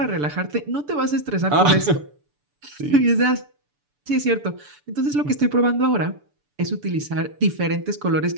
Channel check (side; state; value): left; late; 6.9 ms